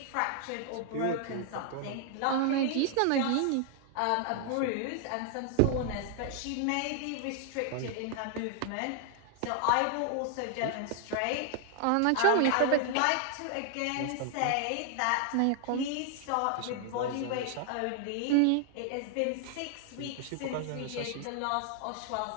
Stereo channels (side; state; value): both; different; correlation 0.00